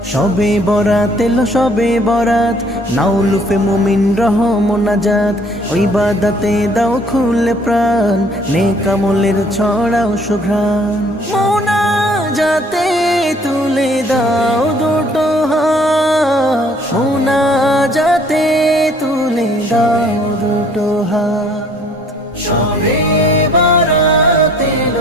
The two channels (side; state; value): both; normal; correlation 0.58